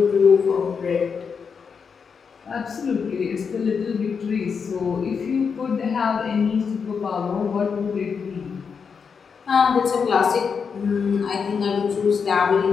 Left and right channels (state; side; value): quieter; right; 6.0 dB